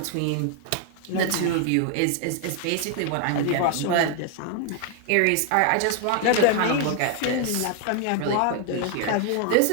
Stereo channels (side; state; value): both; different; correlation 0.00